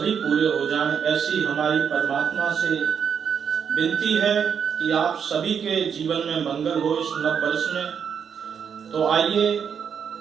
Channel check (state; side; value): quieter; left; 7.3 dB